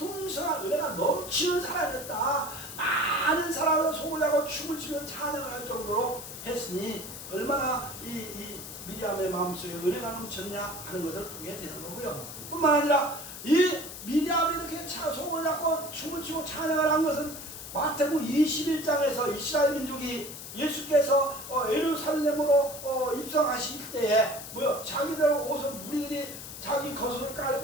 은혜가 넘치는 사람이었다. 많은 사람을 속을 내고 춤을 추며 찬양을 할 정도로 했으니 얼마나 이 미리암의 마음속에 은혜가 넘쳤냐 하는 것을 보게 되는 거고요. 뿐만 아니라 이 미리암이 이렇게 속을 잡고 춤을 추고 찬양을 한 것은 마태복음 21장에서 이스라엘 민족이 예수께서 예루살렘으로 입성하실 때에 자기들 옷을 무리들이 자기 겉옷을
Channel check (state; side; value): noise; left; hiss, 11 dB below the sound